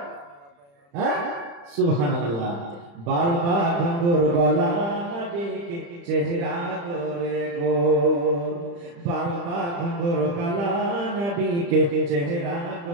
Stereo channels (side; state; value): left; late; 35 ms